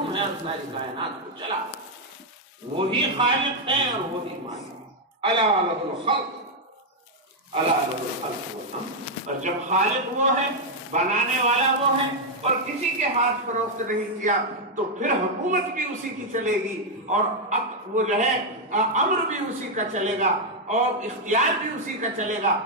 ہے اور ساری کائنات کو چلا، وہی خالق ہے اور وہی مالک۔ الا لہ الخلق الا لہ الخلق والامر، اور جب خالق وہ ہے، بنانے والا وہ ہے، اور کسی کے ہاتھ فروخت نہیں کیا تو پھر حکومت بھی اسی کی چلے گی، اور اب وہ جو ہے امر بھی اسی کا چلے گا اور اختیار بھی اسی کا چلے گا۔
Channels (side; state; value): both; normal; correlation 0.00